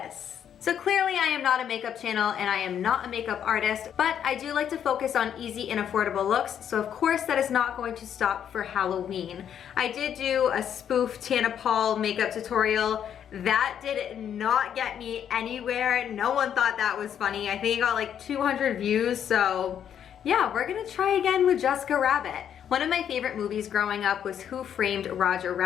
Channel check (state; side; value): quieter; right; 9.1 dB